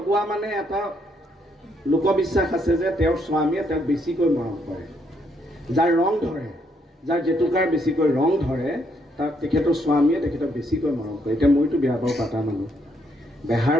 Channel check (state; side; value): normal; both; correlation 0.73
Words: মানে এটা লোকবিশ্বাস আছে যে তেওঁৰ স্বামীয়ে তেওঁক বেছিকৈ মৰম কৰে যাৰ ৰং ধৰে যাৰ জেতুকাৰ বেছিকৈ ৰং ধৰে তাক তেখেতৰ স্বামীয়ে তেখেতক বেছিকৈ মৰম কৰে এতিয়া মইতো বিয়া বাৰু পাতা মানুহ